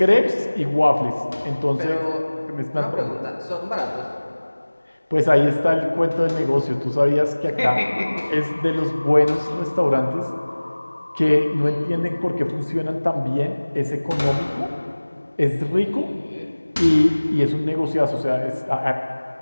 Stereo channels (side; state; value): both; inverted; correlation -1.00